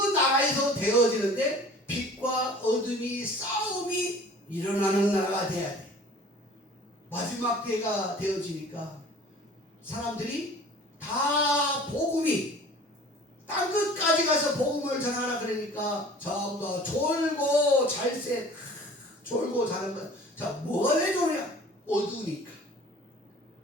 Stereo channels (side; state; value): both; normal; correlation 0.46